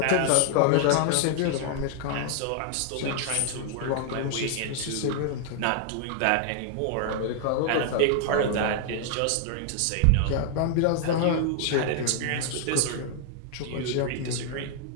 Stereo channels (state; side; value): different; both; correlation 0.00